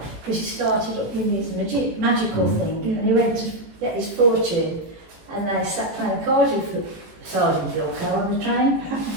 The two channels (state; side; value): late; left; 18 ms